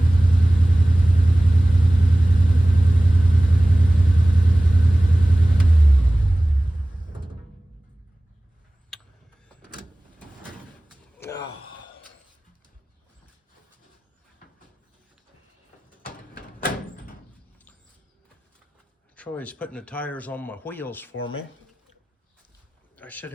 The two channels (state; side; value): normal; both; correlation 0.98